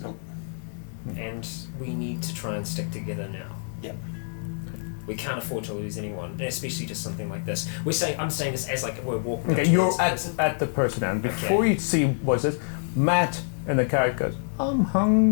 Nope. And we need to try and stick together now. Yeah. We can't afford to lose anyone, and especially just something like this. I'm saying this as like we're walking up Okay, you're towards the person. at the person, and Okay. before you see what's this, Matt in the car goes, "I'm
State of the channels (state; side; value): silent; right; digital silence